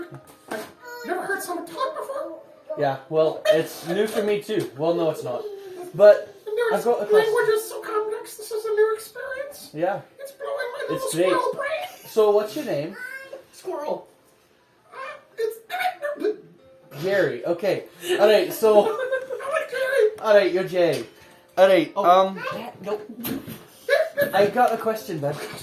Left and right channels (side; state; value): both; identical; correlation 1.00